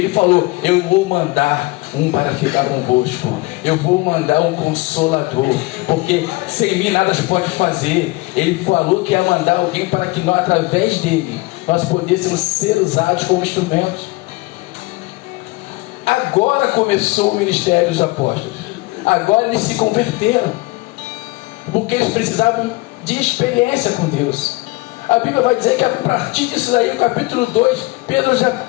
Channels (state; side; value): quieter; right; 22.9 dB